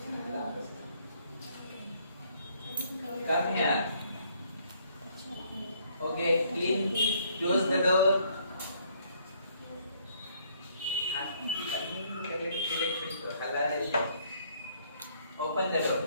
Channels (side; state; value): both; inverted; correlation -0.65